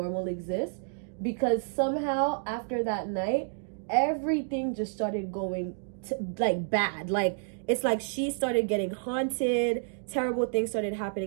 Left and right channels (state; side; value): silent; left; digital silence